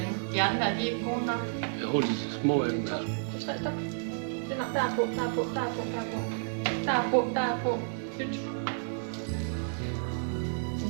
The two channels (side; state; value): left; silent; digital silence